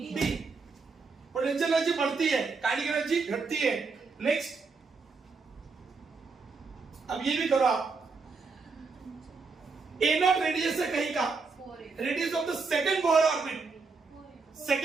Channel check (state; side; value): quieter; left; 4.5 dB